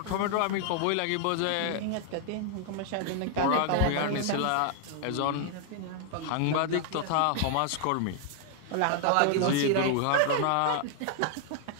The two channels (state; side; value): different; both; correlation 0.00